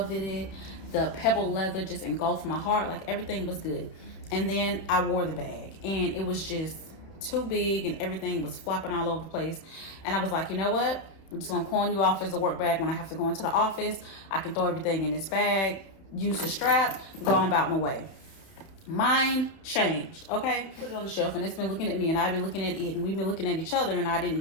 it. The pebble leather just engulfed my heart. Like everything was good. And then I wore the bag and it was just too big and everything was flopping all over the place. And I was like, you know what? I'm just gonna pawn you off as a work bag when I have to go into the office. I can throw everything in this bag, use the strap, go on about my way. Mine changed, okay? Put it on the shelf and it's been looking at me and I've been looking at it and we've been looking at each other and I didn't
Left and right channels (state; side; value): late; right; 31 ms